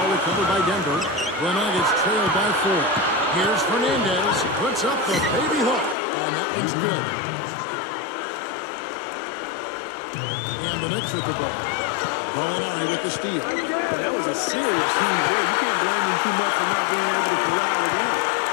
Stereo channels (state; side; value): drops out; right; at 6.0 s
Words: recovered by Denver. The Nuggets trailed by 4. Here's Fernandez. Puts up the baby hook. And that one's good. And the Knicks with the ball. Gallinari with the steal. That was a serious heave there. You can't blame him too much for not being able to corral it in.